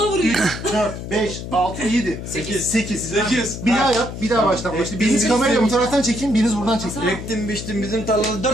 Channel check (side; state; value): left; noise; hum, 9 dB below the sound